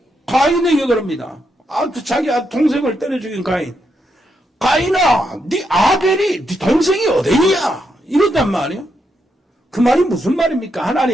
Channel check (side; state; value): both; normal; correlation 0.81